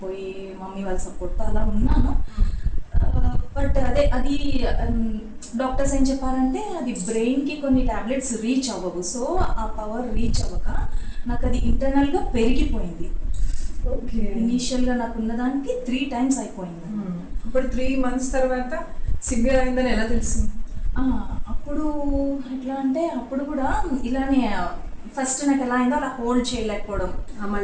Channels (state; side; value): identical; both; correlation 1.00